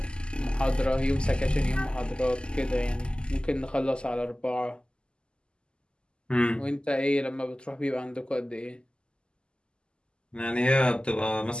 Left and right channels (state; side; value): late; right; 0.049 ms